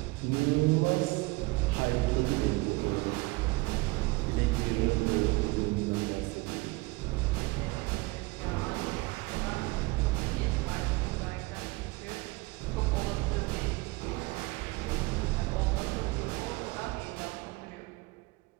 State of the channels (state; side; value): quieter; left; 23.7 dB